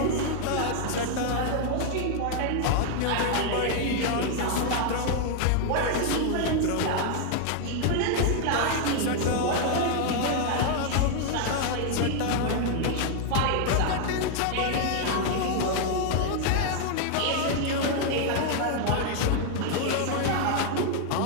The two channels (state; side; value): different; both; correlation 0.00